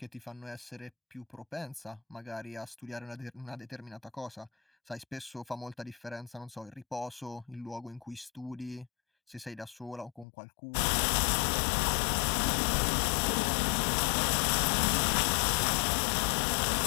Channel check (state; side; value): drops out; right; at 10.2 s